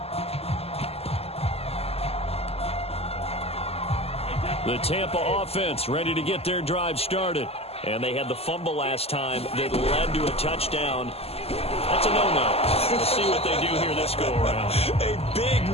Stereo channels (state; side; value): late; right; 0.29 ms